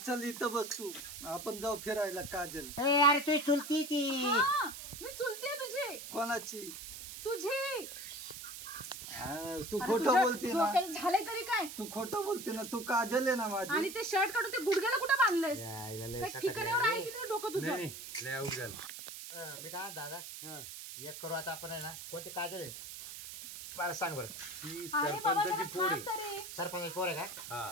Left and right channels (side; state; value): right; noise; hiss, 10 dB below the sound